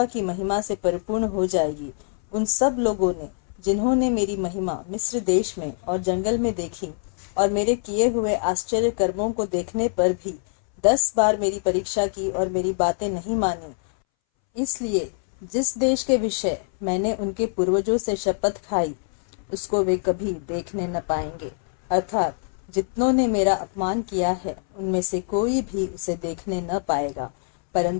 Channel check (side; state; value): right; silent; 61 dB below the other